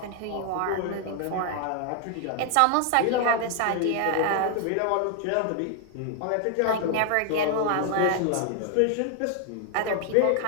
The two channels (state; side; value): different; both; correlation 0.00